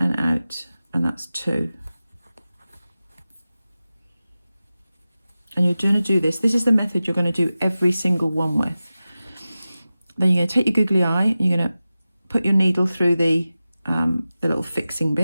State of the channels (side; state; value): both; inverted; correlation -0.95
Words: out, and that's 2. And you're going to do this. This is the method you're going to do every single one with. Then you're going to take your googly eye, and you're going to put your needle through the little fixing